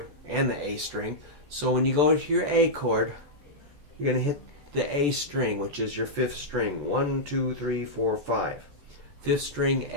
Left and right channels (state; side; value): late; left; 14 ms